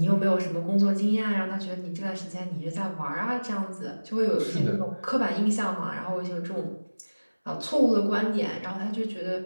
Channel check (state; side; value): inverted; both; correlation -1.00